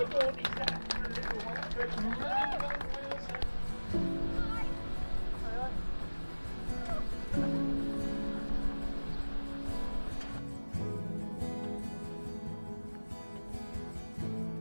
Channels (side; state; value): both; inverted; correlation -1.00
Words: he's had for a little while.